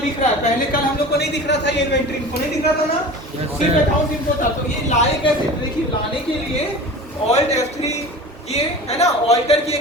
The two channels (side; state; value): both; normal; correlation 0.36